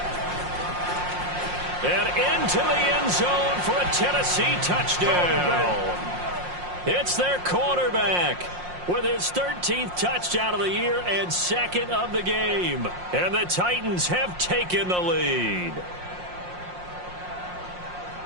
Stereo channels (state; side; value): late; left; 5.6 ms